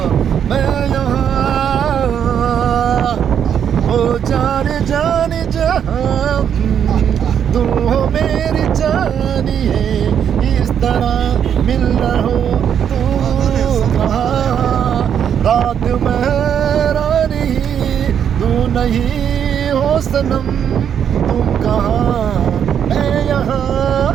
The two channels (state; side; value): quieter; left; 8.6 dB